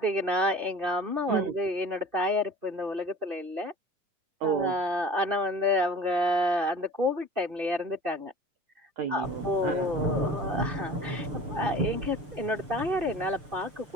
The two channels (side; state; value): left; late; 6.7 ms